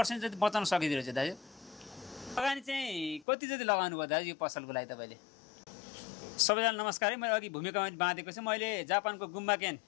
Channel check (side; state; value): right; drops out; at 3.2 s